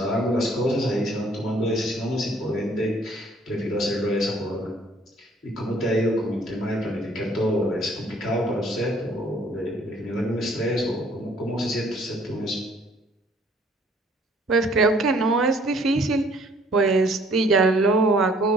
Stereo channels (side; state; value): both; normal; correlation 0.60